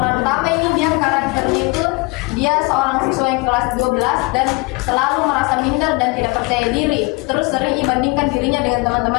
utama ini dia karakternya itu dia seorang siswa yang kelas 12 dan selalu merasa minder dan tidak percaya diri. Terus sering dibandingkan dirinya dengan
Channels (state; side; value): quieter; right; 26.1 dB